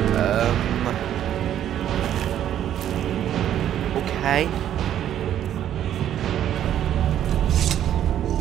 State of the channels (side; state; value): left; quieter; 10.8 dB